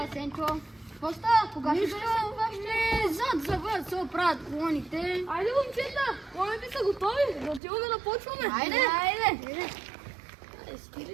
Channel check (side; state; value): left; drops out; at 7.6 s